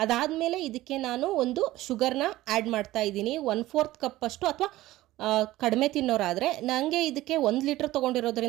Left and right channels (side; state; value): left; quieter; 16.6 dB